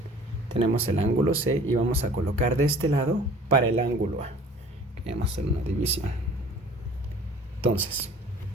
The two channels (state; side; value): normal; both; correlation 0.49